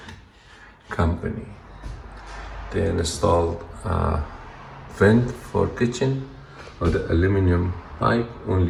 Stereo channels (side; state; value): both; identical; correlation 1.00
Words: company. They installed a vent for kitchen of the aluminum pipe,